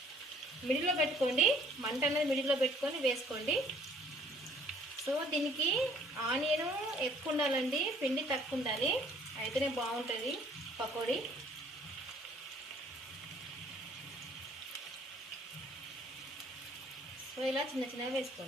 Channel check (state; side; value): normal; both; correlation 0.59